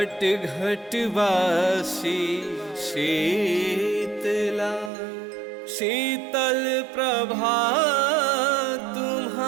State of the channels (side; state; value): left; drops out; at 4.9 s